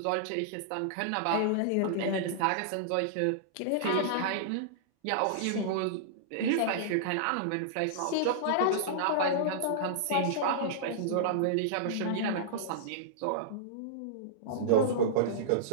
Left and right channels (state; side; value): different; both; correlation -0.02